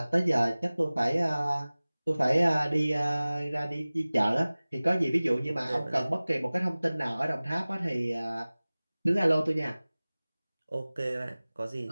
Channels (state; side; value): inverted; both; correlation -0.99